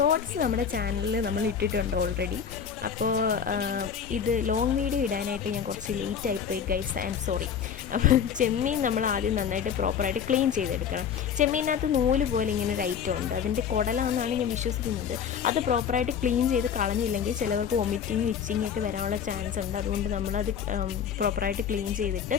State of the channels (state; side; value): quieter; right; 7.6 dB